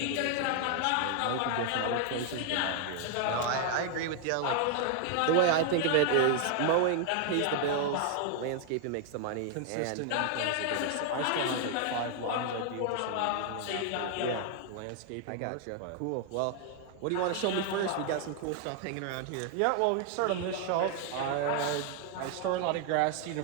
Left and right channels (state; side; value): different; both; correlation 0.00